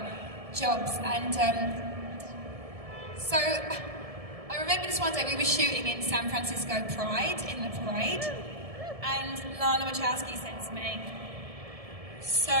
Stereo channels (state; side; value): late; left; 1.7 ms